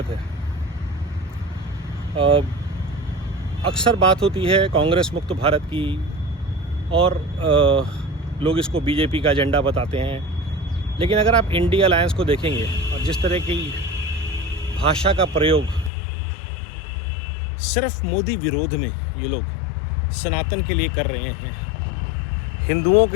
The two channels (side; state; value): right; drops out; at 15.9 s